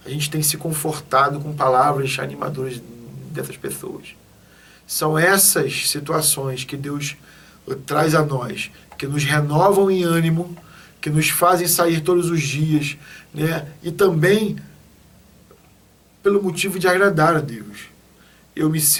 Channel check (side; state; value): both; identical; correlation 1.00